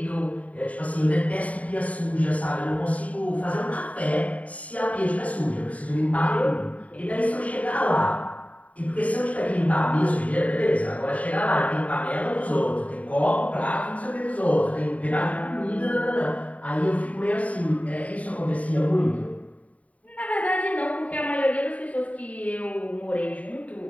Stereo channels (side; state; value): right; late; 0.068 ms